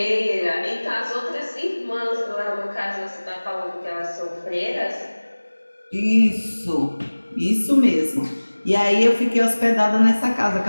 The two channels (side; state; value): both; inverted; correlation -1.00